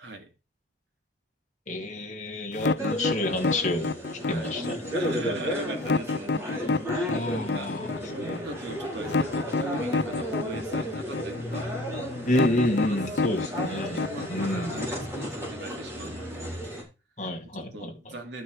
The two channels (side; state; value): both; normal; correlation 0.45